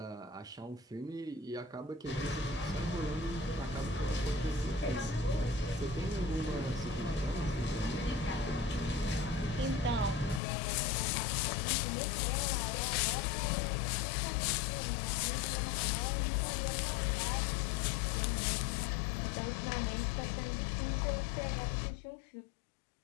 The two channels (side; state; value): right; drops out; at 10.4 s